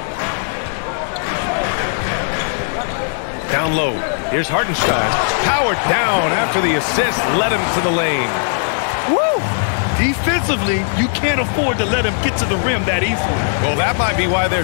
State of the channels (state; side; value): silent; right; 65 dB below the other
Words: Down low. Here's Hartenstein. Powered down after the assist. Led him to the lane. Woo! Defensively, you can't afford to let him get to the rim that easily. Well, that might be why their